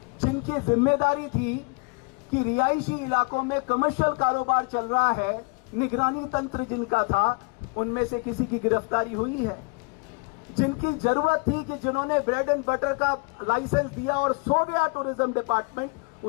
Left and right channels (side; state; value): right; quieter; 31.1 dB